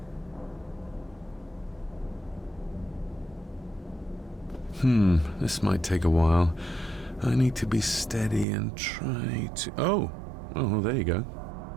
This might take a while. I need to be steady and try to... Oh, there you go.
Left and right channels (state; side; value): drops out; left; at 8.5 s